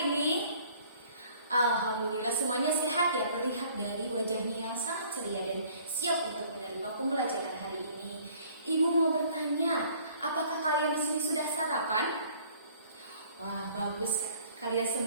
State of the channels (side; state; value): both; inverted; correlation -0.56